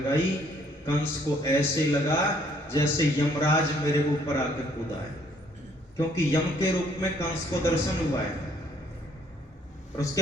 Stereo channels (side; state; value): both; normal; correlation 0.64